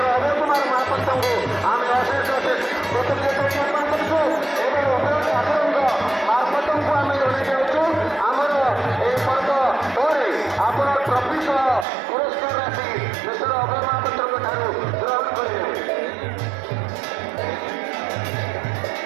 ଅଭୟ କୁମାର ମହାପାତ୍ରଙ୍କୁ ଆମେ ଅଶେଷ ଅଶେଷ କୃତଜ୍ଞତା ଜ୍ଞାପନ କରୁଛୁ ଏବଂ ଅଭୟ ଠାକୁରଙ୍କ ମାର୍ଫତଙ୍କୁ ଆମେ ଜଣାଇ ଯାଉଛୁ ଆମର ଏହି ପର୍ବ ପରେ ଆପଣ ଟ୍ରଫି ସହ ପୁରସ୍କାର ରାଶି ମିଷ୍ଟର ଅଭୟ ମହାପାତ୍ରଙ୍କ ଠାରୁ ଗ୍ରହଣ କରିବେ।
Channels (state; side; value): drops out; left; at 11.9 s